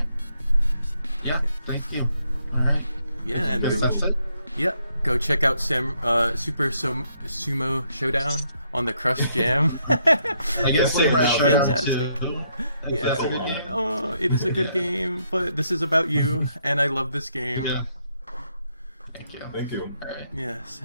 Yeah, thank you. Alright. Yeah, and that's it? Yeah, go check out Super Sumo Showdown on the Crush Jam. I guess Samurai Showdown fantastic. Too. Yeah. That's a good game. Oh, it is a good game, but this is about you, and I love this game. Yeah. Thank you. Thank you. Alright. Yes,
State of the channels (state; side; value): inverted; both; correlation -0.75